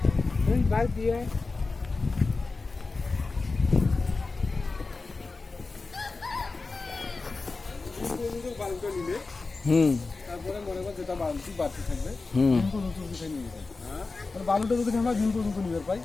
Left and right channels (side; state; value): right; quieter; 3.8 dB